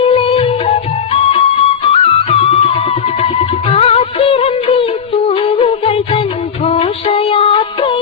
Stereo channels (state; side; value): quieter; right; 7.4 dB